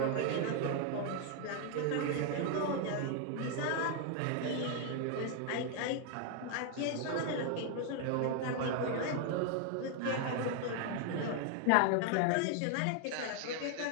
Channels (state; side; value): different; both; correlation 0.00